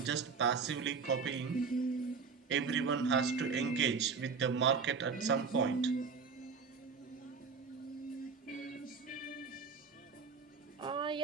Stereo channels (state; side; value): quieter; left; 5.3 dB